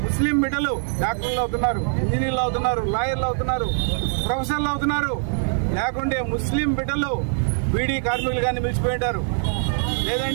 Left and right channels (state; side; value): silent; left; digital silence